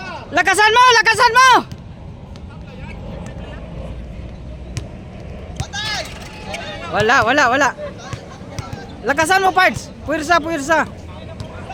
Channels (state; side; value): identical; both; correlation 1.00